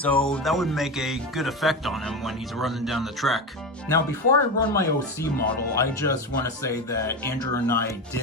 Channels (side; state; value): both; normal; correlation 0.20